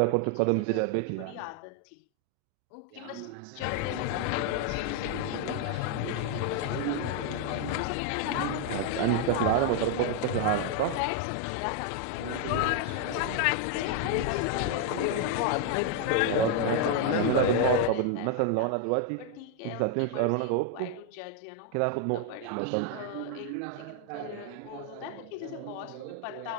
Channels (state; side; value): different; both; correlation 0.00